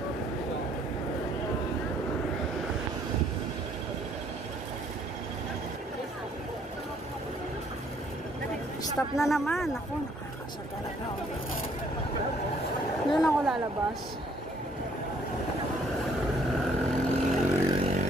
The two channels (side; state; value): both; normal; correlation 0.64